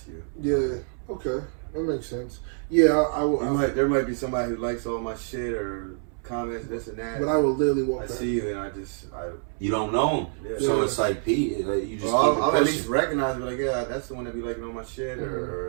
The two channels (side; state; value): left; silent; 61 dB below the other